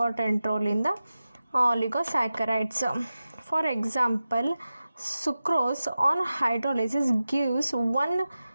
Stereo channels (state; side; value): inverted; both; correlation -0.94